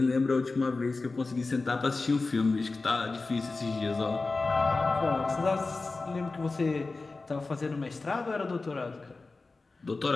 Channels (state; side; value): quieter; right; 3.7 dB